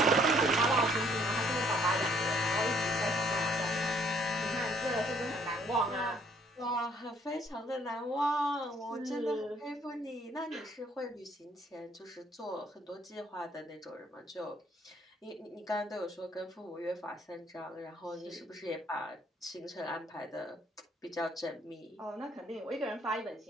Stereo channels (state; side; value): normal; both; correlation 0.63